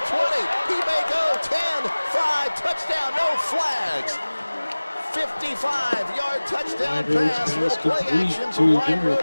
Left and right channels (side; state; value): both; inverted; correlation -1.00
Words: 20. He may go 10, 5, touchdown, no flags. 55-yard touchdown pass, little play action to wide road